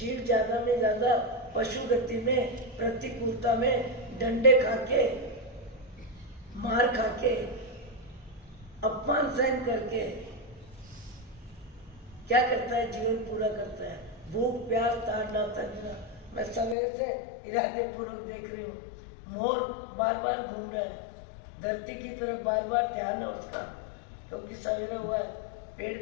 ज्यादा में ज्यादा पशु गति में, प्रतिकूलता में, डंडे खाके, मार खाके, अपमान सहन करके क्या करता है? जीवन पूरा करता है। भूख प्यास ताड़ना तंजना। मैं सवेरे से इरादे पूर्वक देख रही हूँ, मोर बार बार घूम रहा है, धरती की तरफ बार बार ध्यान है उसका, क्योंकि सवेरे हुआ है, पेड़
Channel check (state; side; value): drops out; right; at 16.8 s